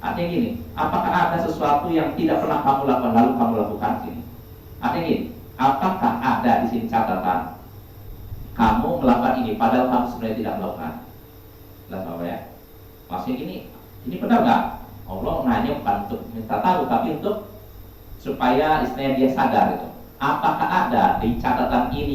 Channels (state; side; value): identical; both; correlation 1.00